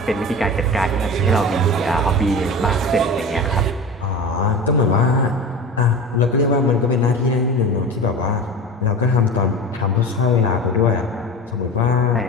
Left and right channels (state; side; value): normal; both; correlation 0.31